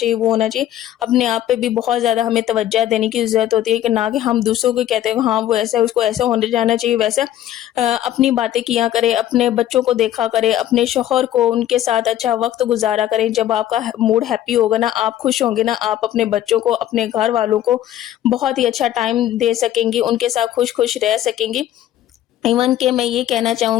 وہ ہونا چاہیے، اپنے آپ پہ بھی بہت زیادہ ہمیں توجہ دینے کی ضرورت ہوتی ہے. کہ نہ کہ ہم دوسروں کو کہتے ہیں ہاں وہ ایسا، اس کو ایسا ہونے جانا چاہیے ویسا. اپنی باتیں کیا کرے، اپنے بچوں کو دیکھا کرے، اپنے شوہر کو، ان کے ساتھ اچھا وقت گزارا کریں. جب آپ کا موڈ ہیپی ہوگا نا، آپ خوش ہوں گے نا، آپ اپنے بچوں کو، اپنے گھر والوں کو بہت ہی اچھا ٹائم دے سکیں گی، ان کے ساتھ خوش خوش رہ سکیں گی. ایون کہ میں یہ کہنا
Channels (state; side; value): quieter; right; 12.3 dB